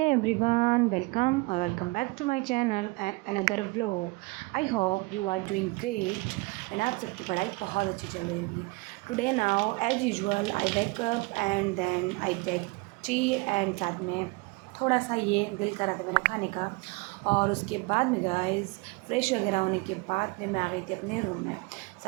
everyone, welcome or welcome back to my channel and another vlog. I hope you are doing great and आप सबकी पढ़ाई बहुत अच्छी चल रही होगी. Today now as usual I wake up and then I take tea and साथ में थोड़ा सा ये दिल करा था मेरा खाने का. और उसके बाद में गाइस फ्रेश वगैरह होने के बाद में मैं आ गई थी अपने रूम में.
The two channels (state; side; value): quieter; left; 25.3 dB